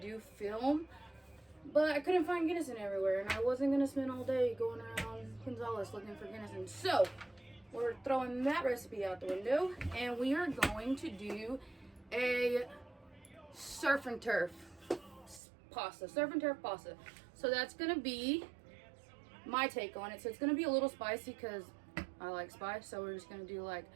film. But I couldn't find Guinness everywhere, and I wasn't gonna spend all day going around Gonzales looking for Guinness. So we're throwing that recipe out the window, and we are going to do a surf and turf pasta. So that's gonna be my take on it. So it's gonna be a little spicy because I like spice. So we're just gonna do like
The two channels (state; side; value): drops out; left; at 15.4 s